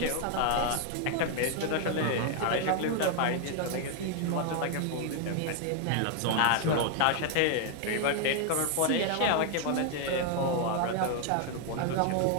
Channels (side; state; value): both; different; correlation 0.00